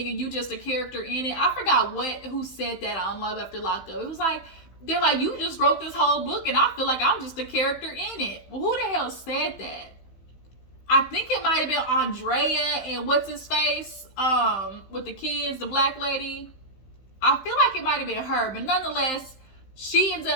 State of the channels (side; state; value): right; late; 15 ms